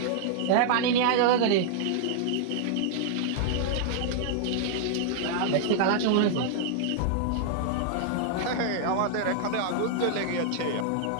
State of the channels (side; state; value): both; different; correlation -0.01